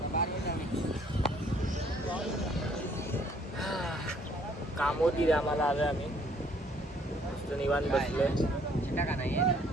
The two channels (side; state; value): both; normal; correlation 0.62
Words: कामोदी आम्हाला आलोय आम्ही, मस्त निवांत बसलोय.